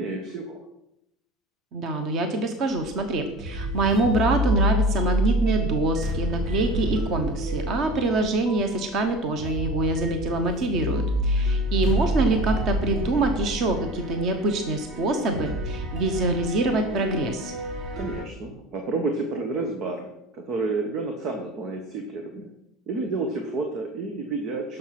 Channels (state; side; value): normal; both; correlation 0.36